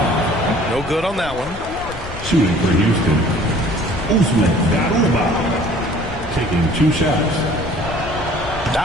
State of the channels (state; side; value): noise; left; rumble, 12 dB below the sound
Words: No good on that one. Shooting for Houston, Usman Garuba, taking 2 shots.